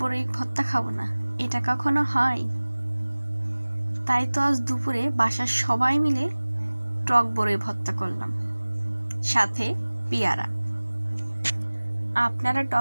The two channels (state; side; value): inverted; both; correlation -1.00